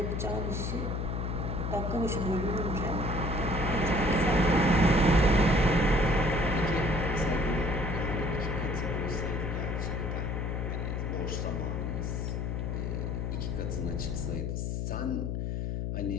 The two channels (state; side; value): noise; left; hum, 1 dB below the sound